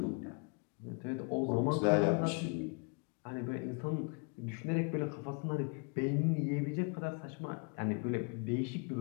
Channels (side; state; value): right; quieter; 36.6 dB